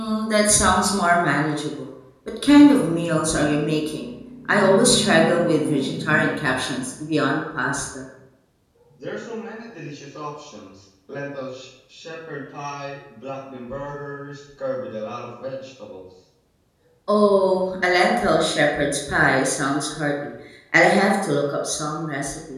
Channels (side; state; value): both; identical; correlation 1.00